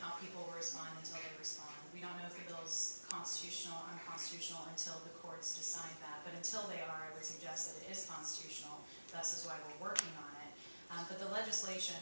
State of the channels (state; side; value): inverted; both; correlation -1.00